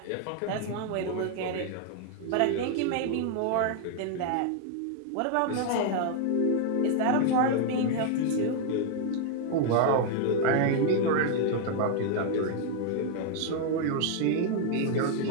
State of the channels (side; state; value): both; different; correlation 0.00